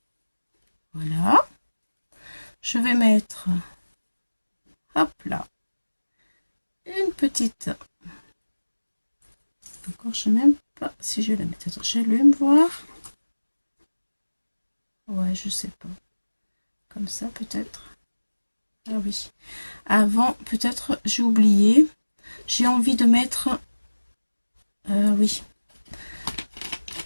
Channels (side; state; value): both; inverted; correlation -1.00